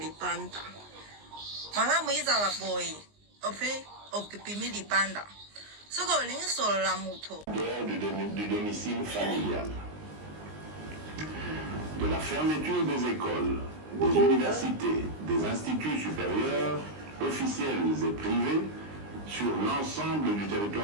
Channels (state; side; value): late; left; 19 ms